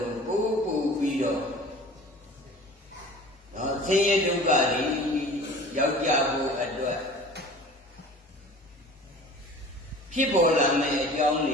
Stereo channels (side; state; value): both; normal; correlation 0.43